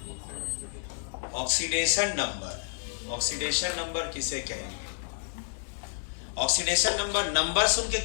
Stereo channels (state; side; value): silent; right; digital silence